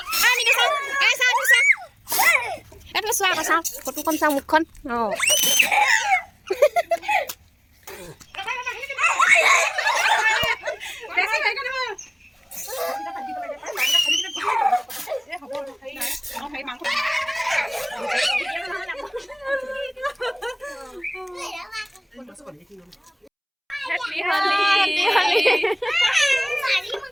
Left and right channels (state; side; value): identical; both; correlation 1.00